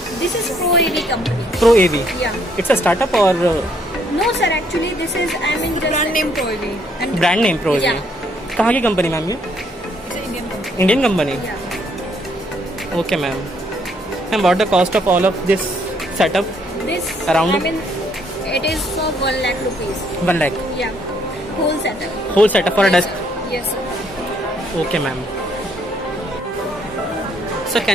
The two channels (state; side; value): normal; both; correlation 0.68